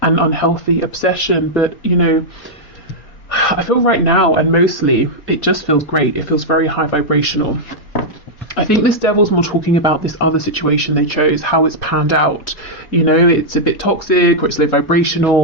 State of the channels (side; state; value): right; late; 4.2 ms